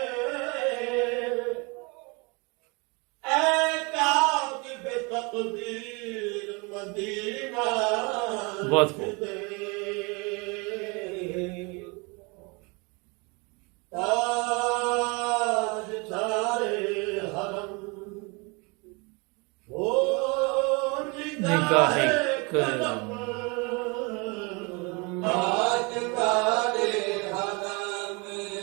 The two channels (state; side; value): quieter; left; 29.6 dB